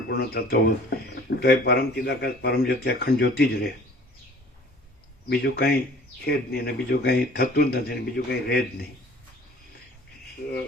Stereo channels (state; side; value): normal; both; correlation 0.49